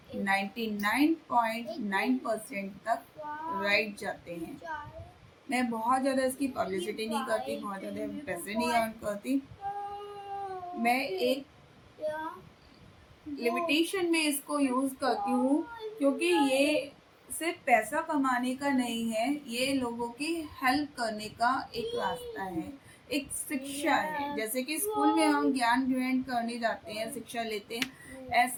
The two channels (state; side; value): identical; both; correlation 1.00